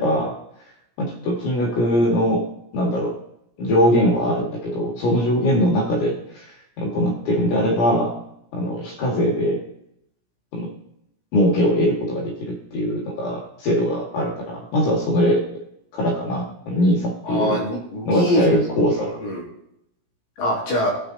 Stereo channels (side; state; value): right; late; 17 ms